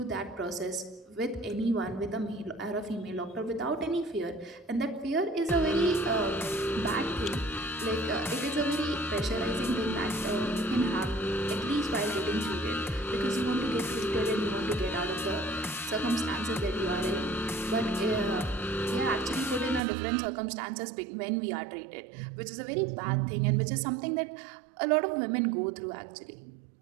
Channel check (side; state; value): left; drops out; at 19.8 s